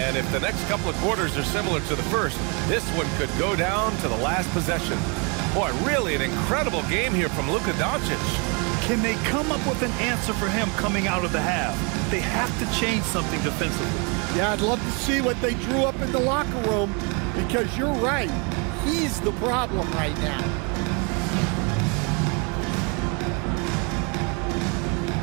if the next couple of quarters are similar to the first, this one could go down to the last possession. Boy, really an incredible game here from Luka Doncic. Can they come up with an answer for him coming out of the half? They have to change something defensively. Yeah, I'd love to see what they drew up in the locker room, because you're right. He's the problem right now.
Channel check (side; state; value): left; quieter; 33.1 dB